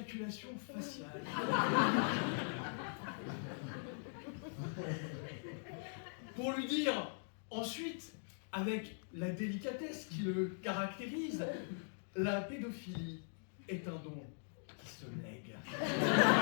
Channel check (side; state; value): right; silent; digital silence